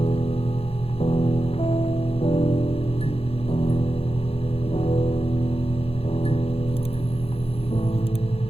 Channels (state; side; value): late; right; 0.28 ms